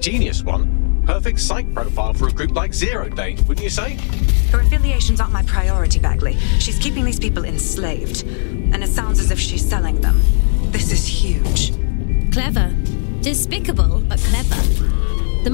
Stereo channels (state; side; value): silent; right; 57 dB below the other